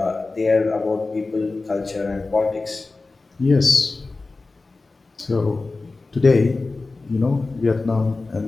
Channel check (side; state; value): right; quieter; 3.6 dB